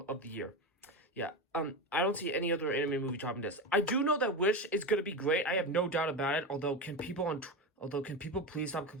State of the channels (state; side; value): normal; both; correlation 0.19